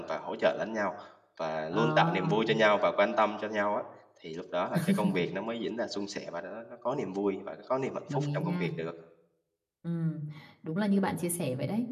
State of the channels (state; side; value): identical; both; correlation 1.00